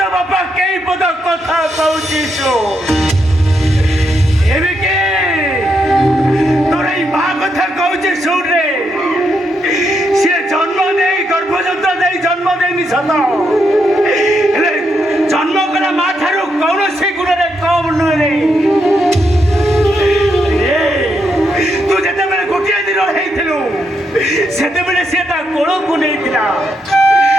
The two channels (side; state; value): both; normal; correlation 0.80